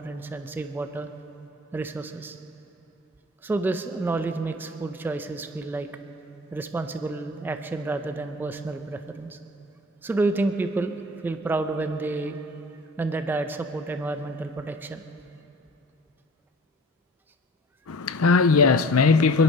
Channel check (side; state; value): both; normal; correlation 0.45